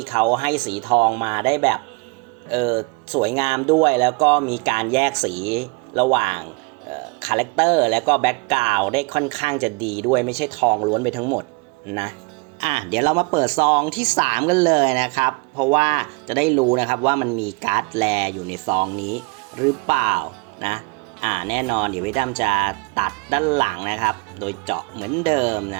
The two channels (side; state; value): left; quieter; 28.6 dB